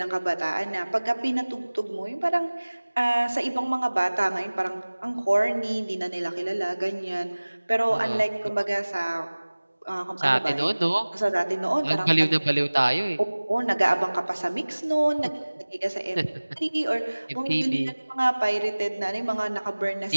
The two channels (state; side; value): inverted; both; correlation -1.00